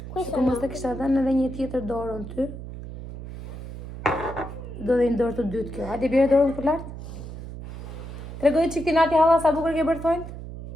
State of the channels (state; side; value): noise; right; hum, 10 dB below the sound